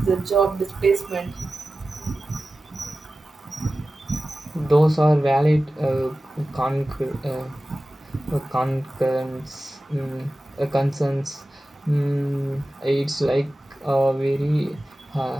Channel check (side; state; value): both; normal; correlation 0.95